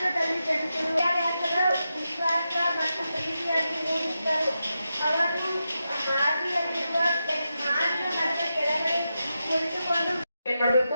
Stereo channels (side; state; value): both; inverted; correlation -0.88